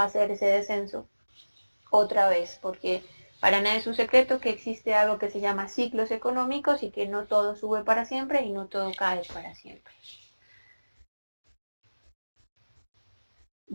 a ser ese descenso otra vez, porque para nada es un secreto que existe algo que se llama ciclos económicos y que no todo sube para siempre y no todo cae para siempre.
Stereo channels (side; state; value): both; inverted; correlation -1.00